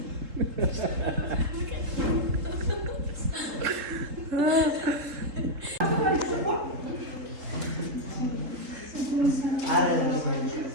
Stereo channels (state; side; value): late; left; 3.7 ms